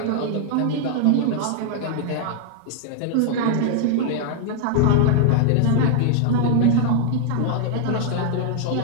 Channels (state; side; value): different; both; correlation -0.01